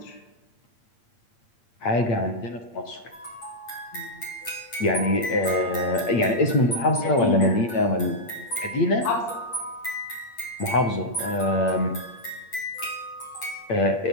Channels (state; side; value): late; right; 8.6 ms